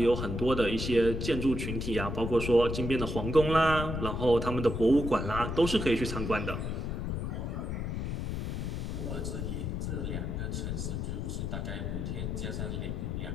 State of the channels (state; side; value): noise; left; rumble, 3 dB below the sound